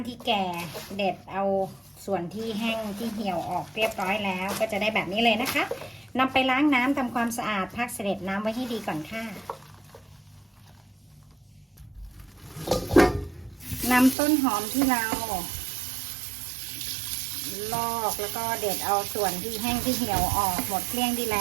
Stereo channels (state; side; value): drops out; left; at 14.2 s